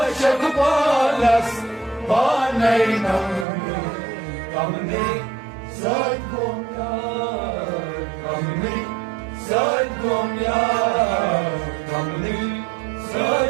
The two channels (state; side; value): drops out; left; at 3.5 s